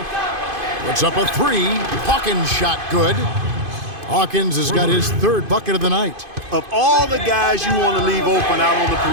Puts up a 3. Hawkins shot good. Hawkins has got his 3rd bucket of the night. Of all the guys you want to leave open out on the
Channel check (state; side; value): late; left; 2.5 ms